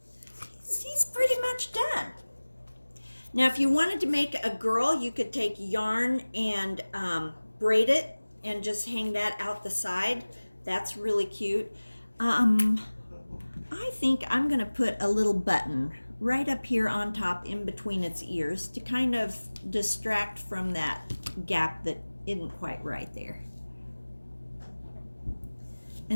he's pretty much done. Now, if you wanted to make a girl, you could take yarn and braid it and just hang that out the side. That's really cute. I think I'm gonna put a little button right up here on top in between its ears to kind of distract from that gap that isn't quite right there.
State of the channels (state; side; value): inverted; both; correlation -1.00